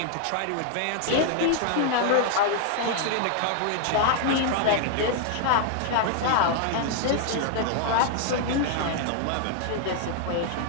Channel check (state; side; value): different; both; correlation 0.00